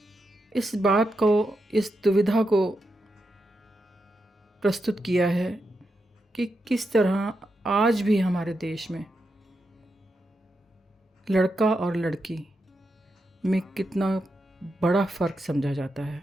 इस बात को, इस दुविधा को प्रस्तुत किया है कि किस तरह आज भी हमारे देश में लड़का और लड़की में कितना बड़ा फ़र्क समझा जाता है।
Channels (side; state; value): both; normal; correlation 0.86